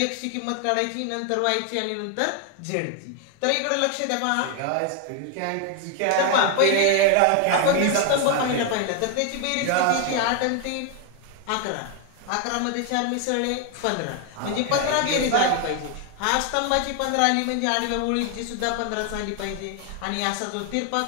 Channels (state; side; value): different; both; correlation 0.01